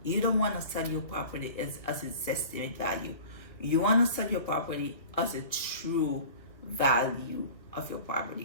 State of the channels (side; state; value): right; late; 1.8 ms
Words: You don't want to sell your property as an estimate value. You want to sell your property as a true value of your